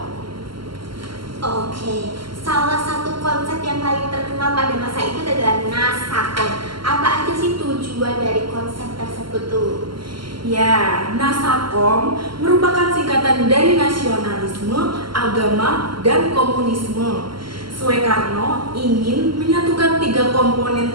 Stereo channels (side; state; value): left; late; 0.73 ms